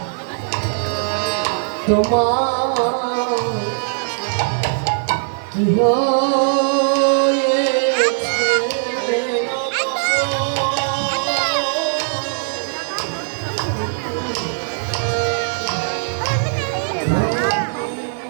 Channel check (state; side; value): silent; left; digital silence